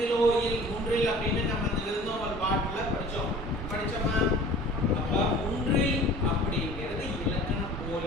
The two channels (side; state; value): both; normal; correlation 0.45